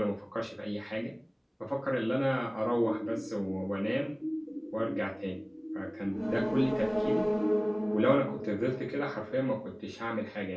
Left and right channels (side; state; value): both; identical; correlation 1.00